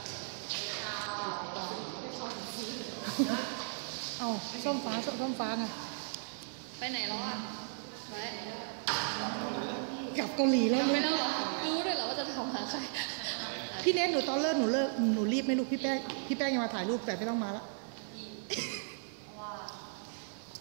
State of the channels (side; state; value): left; silent; digital silence